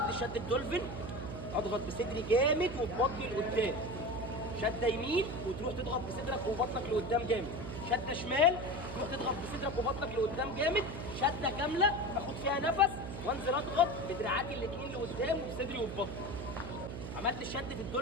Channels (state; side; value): noise; right; hum, 7 dB below the sound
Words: شد الدولفين، اضغط بصدري جامد وببطني لقدام، شده يمين وتروح تضغط بصدرك وبطنك لقدام جامد، شده شمال تروح تضغط بصدرك وبطنك لقدام جامد، شده كامله اخد فيها نفس وانزل اضغط بدراعاتي الاثنين لقدام وبصدري وببطني. عملت الشد في